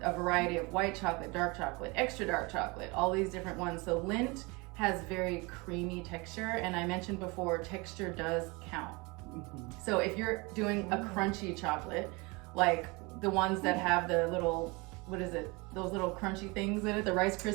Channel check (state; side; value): quieter; left; 26.6 dB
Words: a variety of white chocolate, dark chocolate, extra dark chocolate, all these different ones. So Lindt has very creamy texture, and I mentioned before, texture does count. So if you're doing a crunchy chocolate, like the ones that have the little, those little crunchy things in it, the Rice